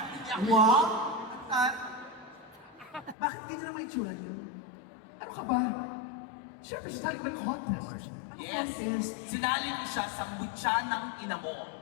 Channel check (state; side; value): drops out; right; at 3.2 s